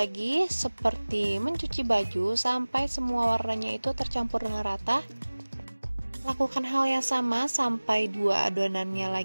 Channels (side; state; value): both; inverted; correlation -1.00